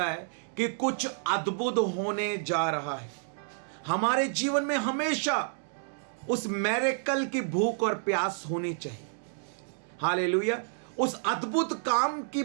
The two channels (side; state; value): left; silent; digital silence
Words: है कि कुछ अद्भुत होने जा रहा है। हमारे जीवन में हमेशा उस मिरेकल की भूख और प्यास होनी चाहिए। हालेलुया। उस अद्भुत काम की